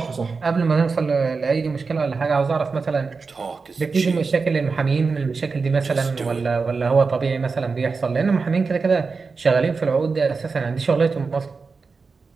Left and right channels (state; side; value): quieter; left; 4.6 dB